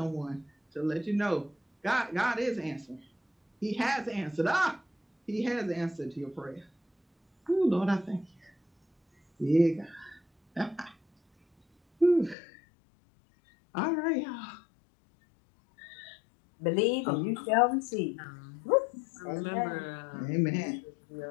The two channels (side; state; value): right; drops out; at 12.4 s